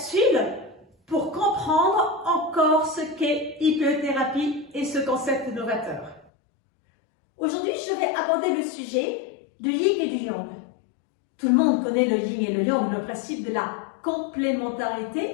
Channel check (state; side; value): drops out; right; at 6.3 s